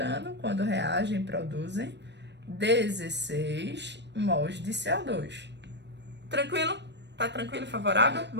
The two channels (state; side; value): late; left; 0.51 ms